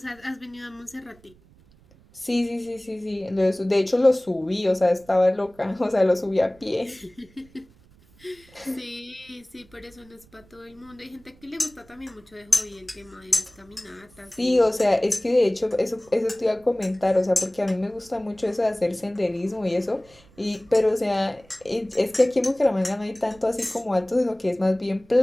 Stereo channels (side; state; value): right; noise; rumble, 28 dB below the sound